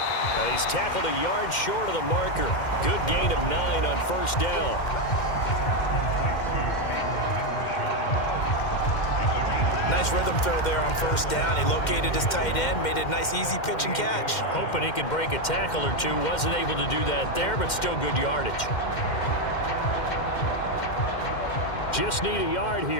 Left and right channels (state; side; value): late; right; 2.1 ms